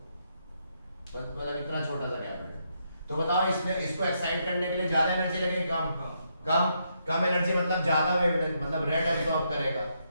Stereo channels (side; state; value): both; inverted; correlation -0.78